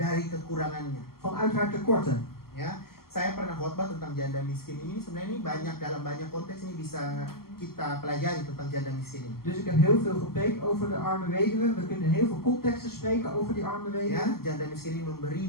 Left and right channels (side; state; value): right; late; 0.93 ms